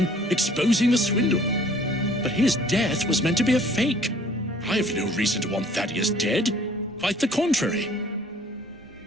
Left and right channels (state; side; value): normal; both; correlation 0.55